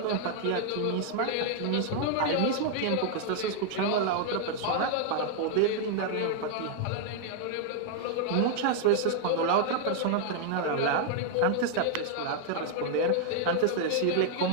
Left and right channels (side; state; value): both; different; correlation 0.00